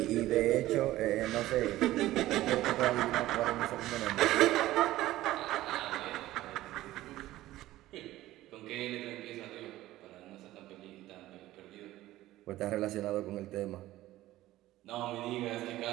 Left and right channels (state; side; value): quieter; left; 15.7 dB